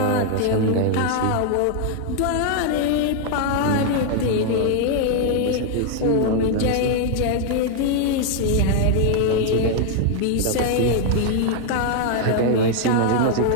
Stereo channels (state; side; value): different; both; correlation 0.00